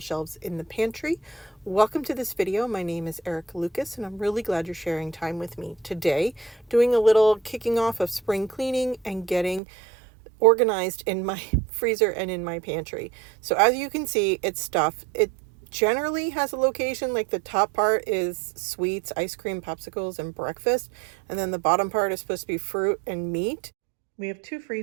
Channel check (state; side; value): drops out; left; at 9.6 s